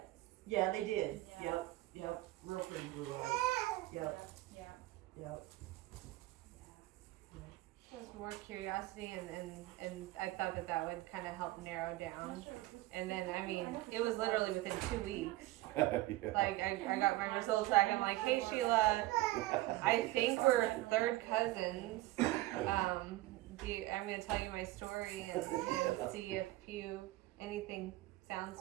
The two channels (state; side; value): quieter; left; 17.7 dB